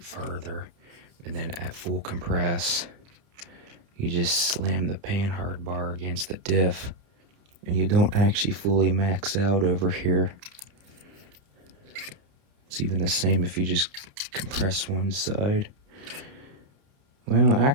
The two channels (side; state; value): left; late; 30 ms